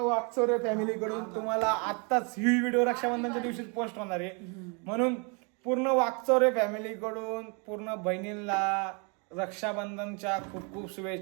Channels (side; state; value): left; quieter; 34.2 dB